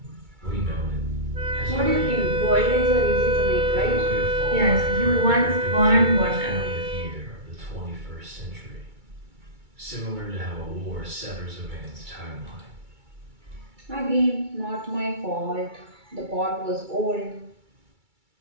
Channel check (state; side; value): late; left; 2.3 ms